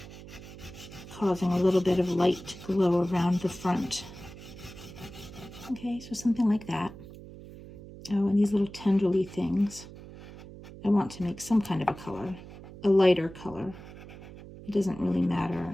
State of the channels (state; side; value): noise; right; hum, 16 dB below the sound